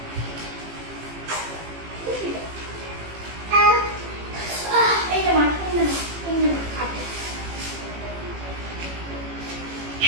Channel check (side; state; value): left; late; 18 ms